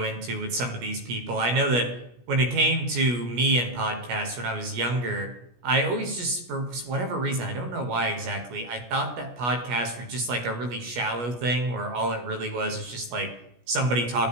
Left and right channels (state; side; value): late; left; 17 ms